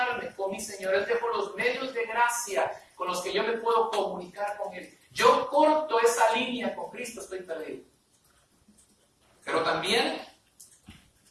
con mi Señor. Él dejó los medios de gracia con los que yo me puedo comunicar con Él. Yo corto esa línea con Cristo, estoy perdido. Pero también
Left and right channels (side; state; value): both; identical; correlation 1.00